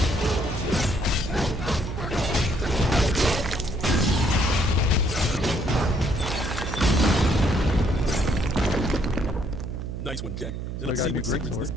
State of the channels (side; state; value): right; noise; hum, 6 dB below the sound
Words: Nice one, Jack. So I Let's got see a new what secrets greatsword. this